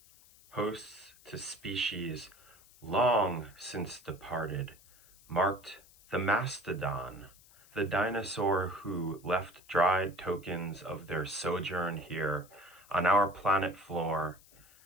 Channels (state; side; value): noise; left; hiss, 25 dB below the sound